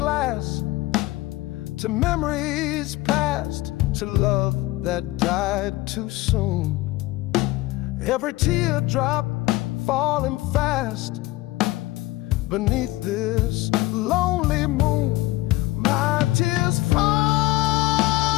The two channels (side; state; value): right; quieter; 18.8 dB